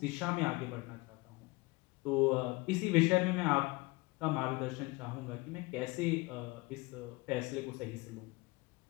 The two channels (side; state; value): right; quieter; 23.8 dB